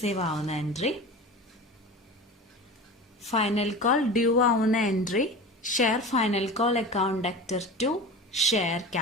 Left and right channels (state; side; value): normal; both; correlation 0.32